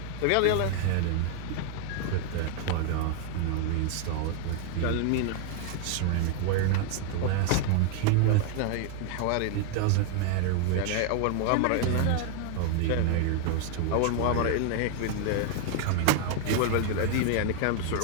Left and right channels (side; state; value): both; different; correlation 0.00